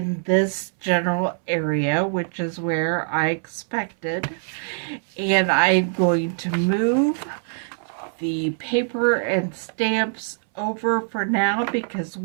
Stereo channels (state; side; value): silent; left; 63 dB below the other